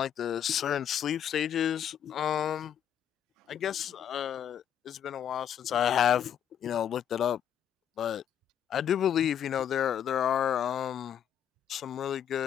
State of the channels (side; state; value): right; quieter; 9.4 dB